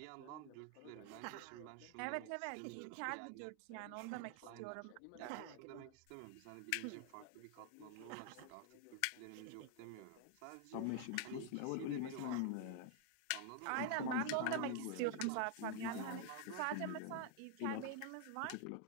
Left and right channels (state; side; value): different; both; correlation 0.00